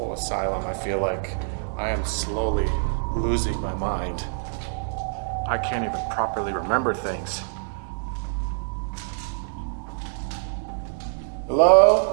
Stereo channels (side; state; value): left; silent; digital silence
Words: asylum, I feel like I am slowly losing my mind. I can't even properly remember things.